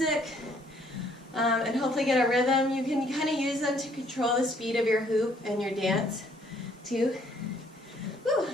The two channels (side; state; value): both; normal; correlation 0.64